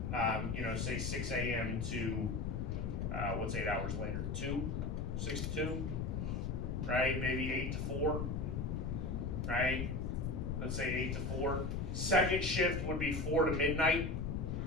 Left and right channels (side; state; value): left; noise; rumble, 1 dB below the sound